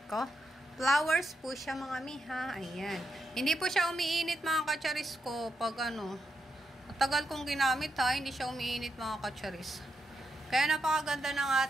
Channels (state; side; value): normal; both; correlation 0.83